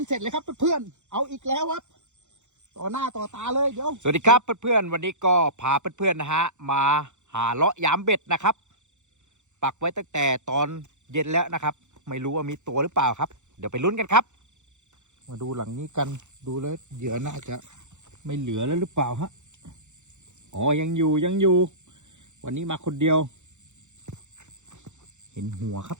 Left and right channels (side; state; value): left; late; 0.84 ms